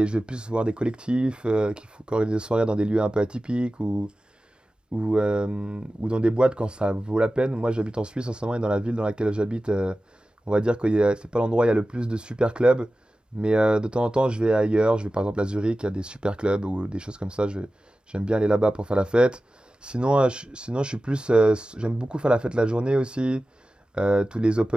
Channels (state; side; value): normal; both; correlation 0.95